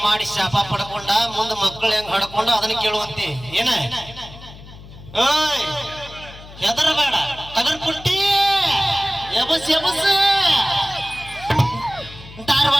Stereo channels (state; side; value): noise; left; hum, 17 dB below the sound